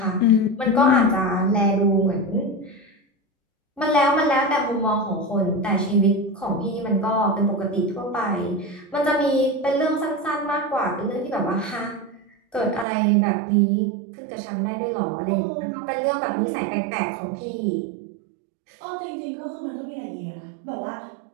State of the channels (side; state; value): left; drops out; at 12.9 s